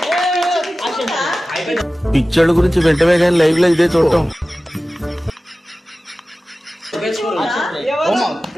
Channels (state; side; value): normal; both; correlation 0.96